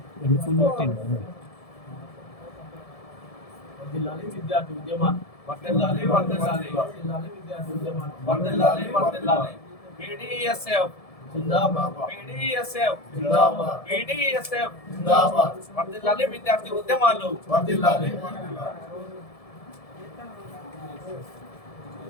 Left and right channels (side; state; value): right; late; 1.7 ms